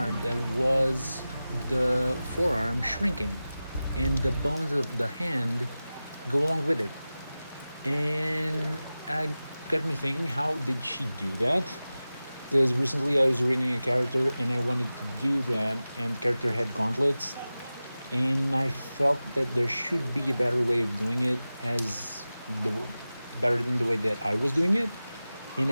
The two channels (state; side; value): inverted; both; correlation -0.96